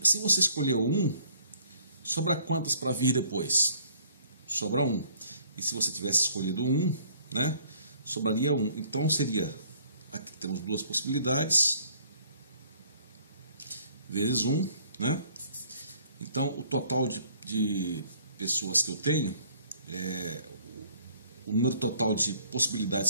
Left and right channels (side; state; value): both; inverted; correlation -0.59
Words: se você escolher o 1, sobra quantas para vir depois? Sobra 1. E se você tivesse escolhido 1, né, sobraria 1. Então seria, aqui temos duas possibilidades, vezes 1, né? Então o total de pessoas que eu tenho, o número total de